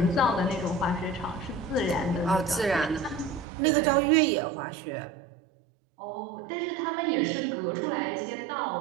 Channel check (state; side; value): drops out; left; at 3.5 s